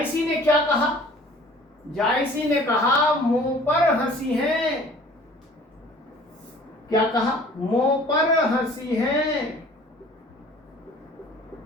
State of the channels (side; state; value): both; normal; correlation 0.50